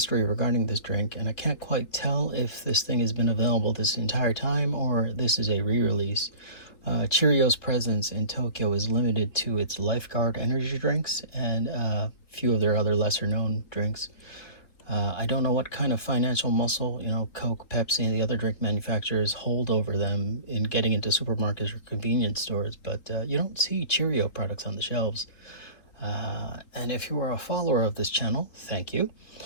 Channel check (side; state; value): right; late; 4.0 ms